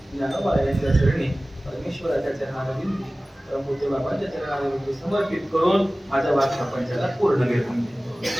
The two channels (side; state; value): both; normal; correlation 0.97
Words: ज्ञानोबारायांच्या चरणी परमेश्वराच्या चरणावरील परमपूज्य बाबांच्या चरणावरील समर्पित करून माझ्या वाक्य प्रपंचाला पूर्ण घेऊन